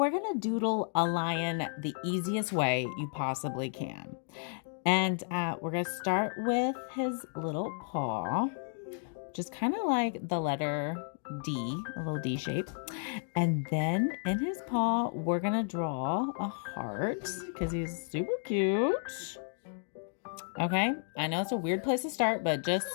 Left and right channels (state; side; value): silent; right; 56 dB below the other